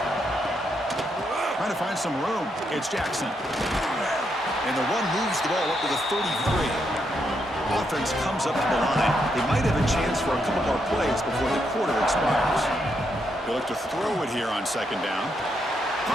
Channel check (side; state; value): both; normal; correlation 0.79